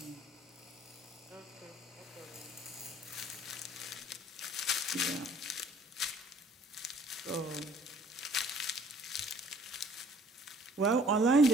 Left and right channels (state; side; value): normal; both; correlation 0.56